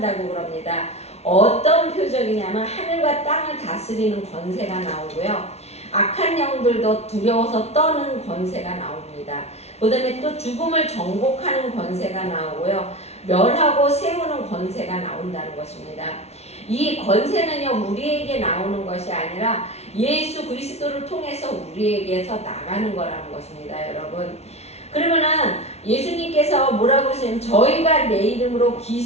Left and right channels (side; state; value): right; late; 0.31 ms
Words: 그럽니다. 어떤 표적이냐면 하늘과 땅을 다스리는 권세가 나오고요. 악한 영들도 두려워서 떠는 권세가 나옵니다. 그 다음에 또 죽음을 정복하는 권세가 나오고요. 멸하고 세우는 권세가 나온다는 것입니다. 이 권세는요 우리에게 나오는 것이 아니라 예수 그리스도를 통해서 우리에게서 나가는 거라는 것입니다, 여러분. 그러면은 예수님께서 뭐라고 하시냐면 저희가 내 이름으로